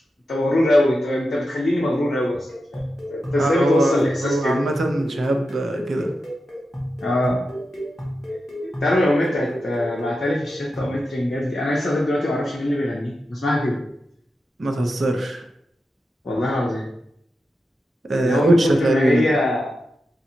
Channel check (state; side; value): normal; both; correlation 0.90